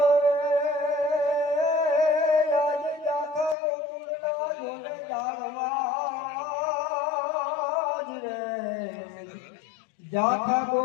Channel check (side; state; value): right; drops out; at 3.6 s